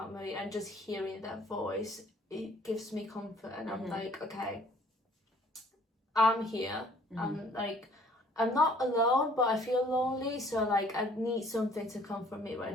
and just hearing their voice, it gives me comfort, and I'm like, okay, I'm here. I'm not alone, but I feel lonely, so like I need something to comfort me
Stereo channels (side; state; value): both; normal; correlation 0.57